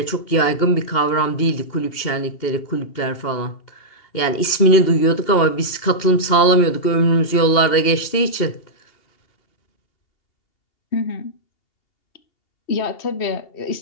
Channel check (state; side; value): late; right; 2.8 ms